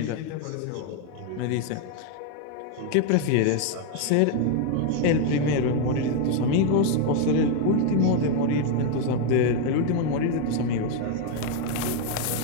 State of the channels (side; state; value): both; different; correlation 0.01